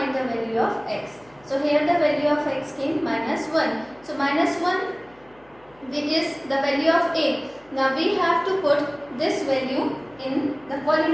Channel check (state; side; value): noise; left; hum, 30 dB below the sound